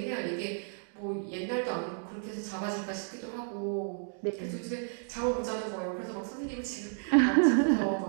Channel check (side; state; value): left; silent; 56 dB below the other